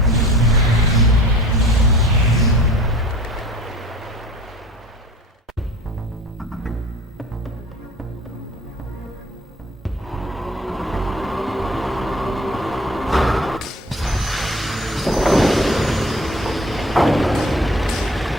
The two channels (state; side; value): normal; both; correlation 0.46